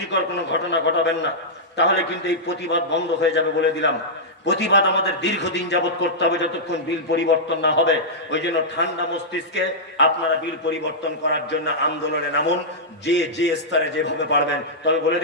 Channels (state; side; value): normal; both; correlation -0.11